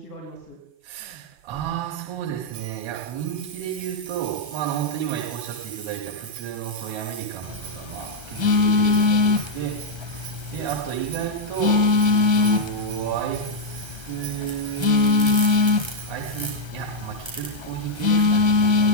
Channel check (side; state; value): left; late; 1.3 ms